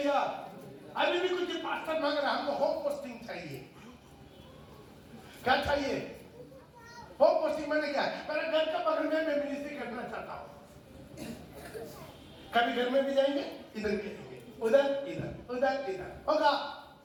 अभी भी कुछ पास्टर मांग रहा है, हमको होम पोस्टिंग चाहिए। क्या चाहिए? होम पोस्टिंग मैंने क्या है, मेरे घर का बगल में मैं मिनिस्ट्री करना चाहता हूं। कभी घर में भी जाएंगे, इधर भी जाएंगे, उधर इधर उधर इधर होगा,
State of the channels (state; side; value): identical; both; correlation 1.00